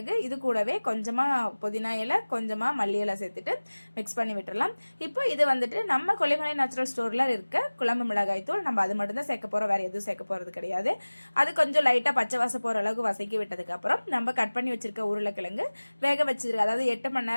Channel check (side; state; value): both; inverted; correlation -1.00